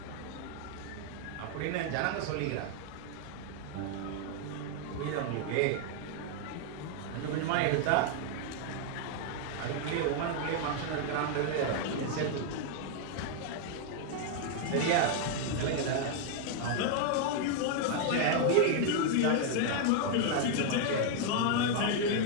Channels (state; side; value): different; both; correlation 0.00